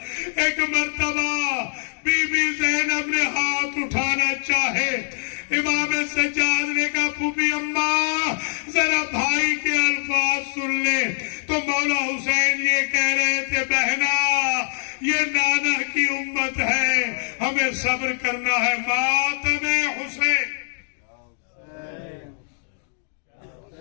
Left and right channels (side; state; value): right; silent; digital silence